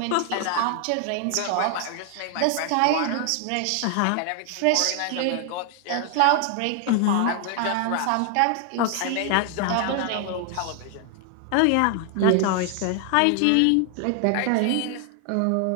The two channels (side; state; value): both; different; correlation 0.00